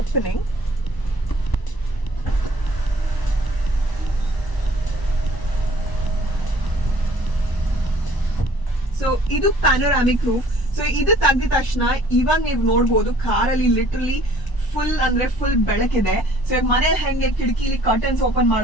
So ಇದು ಪ್ಯಾನೋರಾಮಿಕ್ ರೂಫ್. ಸೊ ಇದು ತೆಗೆದ ತಕ್ಷಣ ಇವಾಗ ನೀವು ನೋಡ್ಬೋದು ಕಾರಲ್ಲಿ ಲಿಟರಲಿ ಫುಲ್ ಬೆಳಕಿದೆ. ಸೊ ಮನೆ ಹೆಂಗೆ ಕಿಟಕಿಲಿ ಕರ್ಟನ್ಸ್ ಓಪನ್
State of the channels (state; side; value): late; right; 1.0 ms